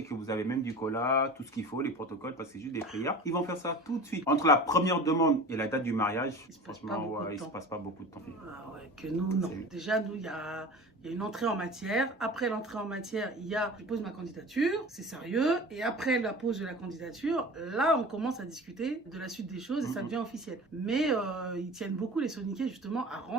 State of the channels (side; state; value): both; normal; correlation 0.37